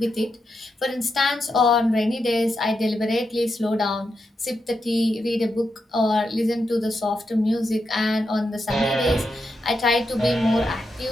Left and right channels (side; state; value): both; normal; correlation 0.85